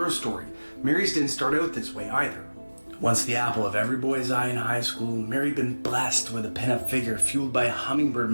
story, Mary's didn't start out this way either. Once the apple of every boy's eye in high school, Mary had been blessed with a pinup figure fueled by a hummingbird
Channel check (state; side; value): inverted; both; correlation -1.00